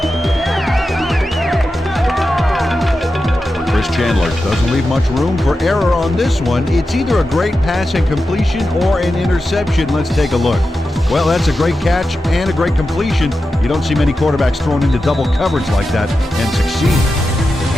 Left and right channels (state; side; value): normal; both; correlation 0.91